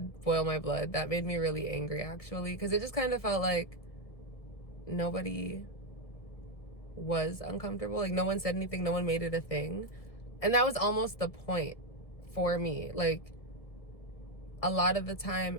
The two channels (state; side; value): late; right; 1.7 ms